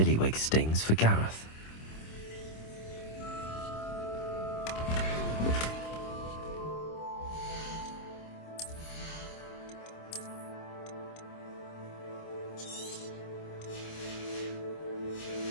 stings for Gareth?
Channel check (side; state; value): right; late; 26 ms